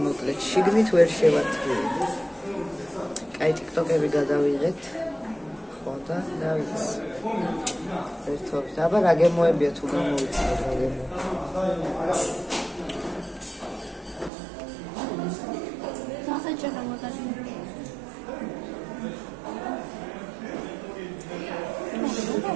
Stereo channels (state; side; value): drops out; left; at 14.3 s